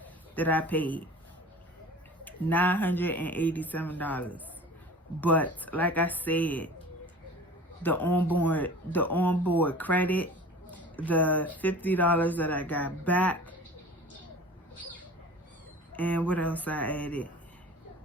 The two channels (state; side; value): normal; both; correlation 0.41